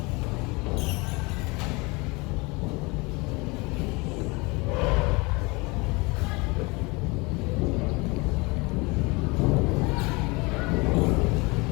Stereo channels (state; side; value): quieter; right; 26.1 dB